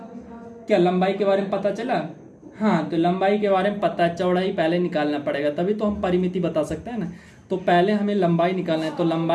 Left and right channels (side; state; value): both; identical; correlation 1.00